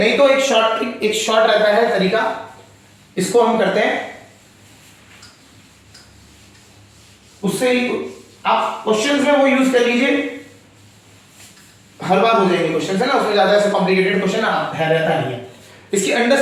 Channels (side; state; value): both; identical; correlation 1.00